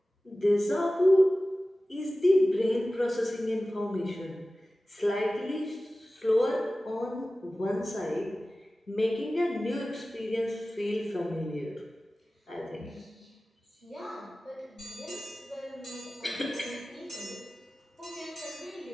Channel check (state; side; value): normal; both; correlation 0.96